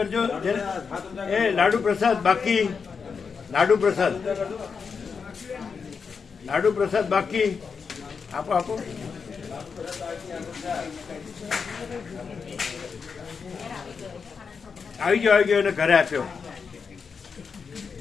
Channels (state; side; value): quieter; right; 5.7 dB